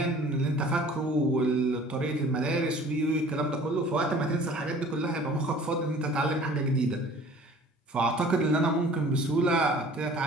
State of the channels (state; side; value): normal; both; correlation 0.49